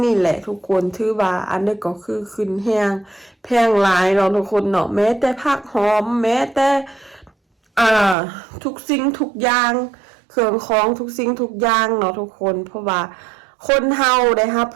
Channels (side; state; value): left; drops out; at 8.2 s